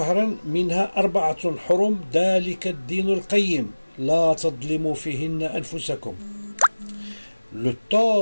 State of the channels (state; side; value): inverted; both; correlation -1.00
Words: منها 4 حرم ذلك الدين القيم لا تظلموا فيهن أنفسكم. Le